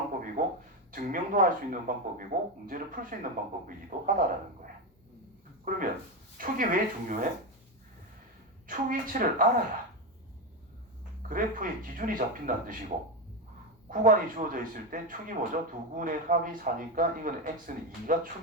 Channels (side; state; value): both; normal; correlation 0.13